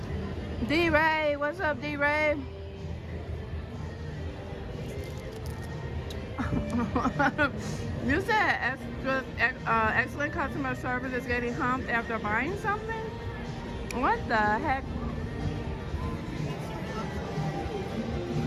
D-Ray, what's up, D-Ray? You said excellent customer service is getting humped after buying something? What the heck?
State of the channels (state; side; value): identical; both; correlation 1.00